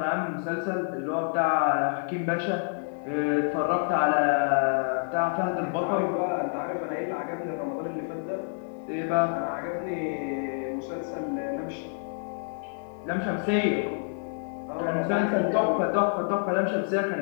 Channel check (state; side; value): silent; right; 59 dB below the other